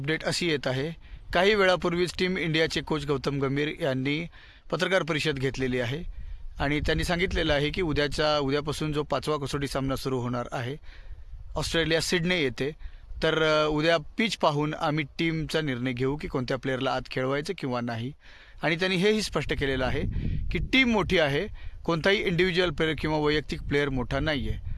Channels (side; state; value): both; identical; correlation 1.00